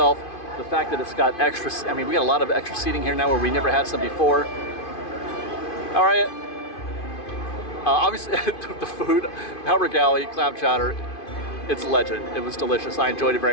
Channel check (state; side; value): late; right; 2.5 ms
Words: the fact that it's got extra, we got a lot of extra seating here now where we never had some before. All right. Obviously, the food, Harbor Galley, clam chowder, it's legend. It was delicious. I enjoyed it